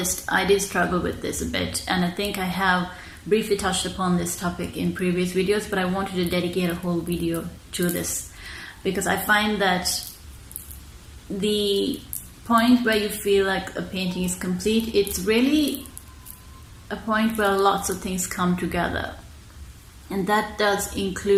I did struggle with this a bit, and I think I have briefly touched upon this topic in previous videos, but I wanted to dedicate a whole video to this because I find that the point where you feel like a painting is complete, it's really a point where lots of things come together, and that does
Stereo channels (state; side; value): identical; both; correlation 1.00